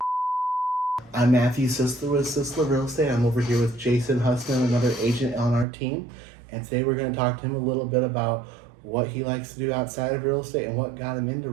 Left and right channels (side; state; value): left; drops out; at 5.7 s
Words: I'm Matthew Cisler with Cisler Real Estate. I'm over here with Jason Huhsman, another agent on our team. And today we're going to talk to him a little bit about what he likes to do outside of real estate and what got him into